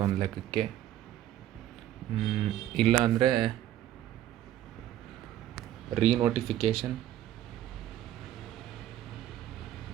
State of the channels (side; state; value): left; quieter; 12.5 dB